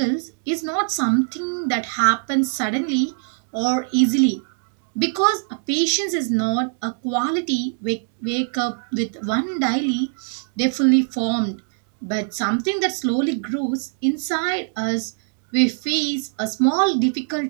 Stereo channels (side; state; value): left; silent; digital silence